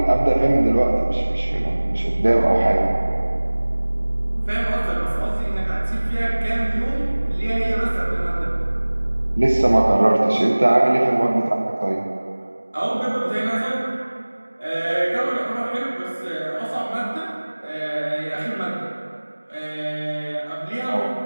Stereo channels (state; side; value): inverted; both; correlation -1.00